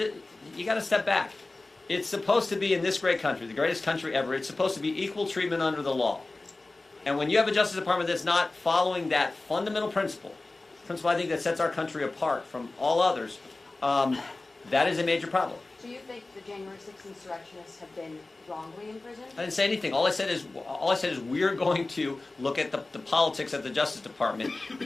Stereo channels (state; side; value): quieter; right; 3.2 dB